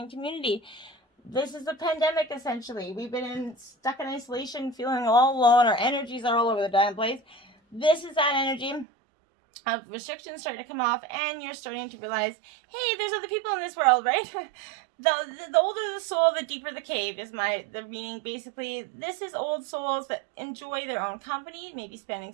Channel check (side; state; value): left; drops out; at 8.8 s